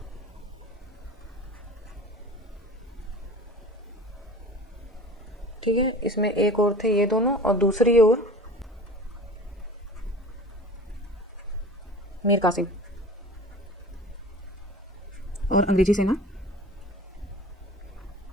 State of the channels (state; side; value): normal; both; correlation 0.39